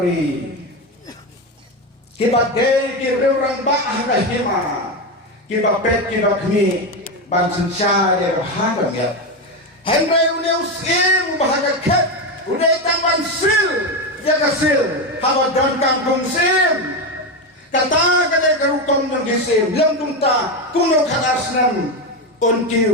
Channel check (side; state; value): both; normal; correlation 0.13